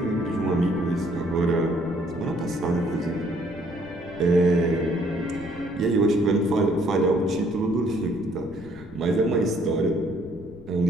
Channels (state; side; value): noise; left; rumble, 19 dB below the sound